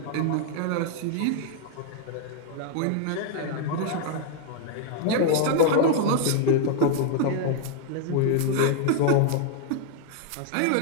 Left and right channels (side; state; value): both; different; correlation 0.00